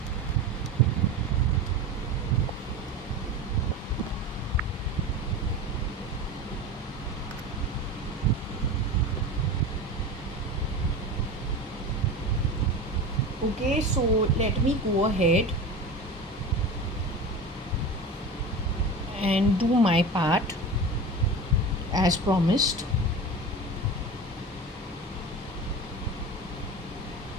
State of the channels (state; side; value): normal; both; correlation 0.29